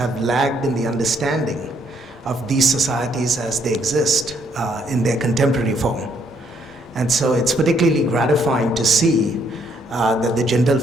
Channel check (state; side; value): normal; both; correlation 0.69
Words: lagged in the understanding of these societies as they exist in their contemporary form. And so it's particularly gratifying to see that the Jindal